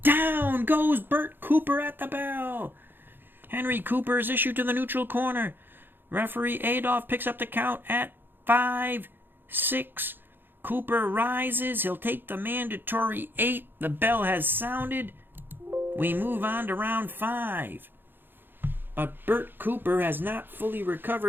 Down goes Bert Cooper at the bell. Henry Cooper is issued to the neutral corner. Referee Adolph picks up the count at 5, 6. Cooper rises. He'll take the mandatory 8. The bell has sounded. We move on to round 5. But Bert Cooper has not fully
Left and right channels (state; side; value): late; left; 0.098 ms